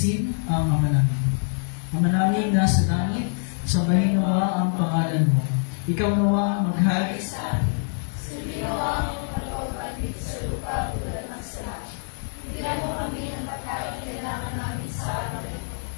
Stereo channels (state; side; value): silent; right; digital silence